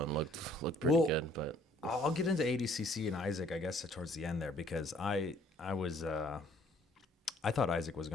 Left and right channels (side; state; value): both; normal; correlation 0.59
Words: and looked pretty good, but I'll get into ADCC and Isaac, I guess, towards the end there, because I thought Isaac was